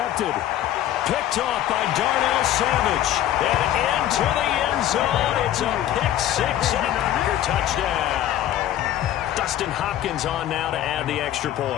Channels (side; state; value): right; quieter; 12.3 dB